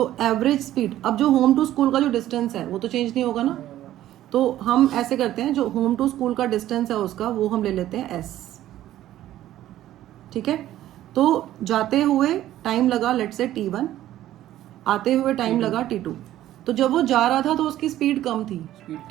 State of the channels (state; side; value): quieter; left; 13.4 dB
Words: एवरेज स्पीड, अब जो होम टू स्कूल का जो डिस्टेंस है वो तो चेंज नहीं होगा ना, तो हम ऐसे करते हैं, जो होम टू स्कूल का डिस्टेंस है उसका वो हम ले लेते हैं s, ठीक है। तो जाते हुए टाइम लगा लेट से t1, आते हुए टाइम लगा t2। तो जब वो जा रहा था तो उसकी स्पीड कम थी,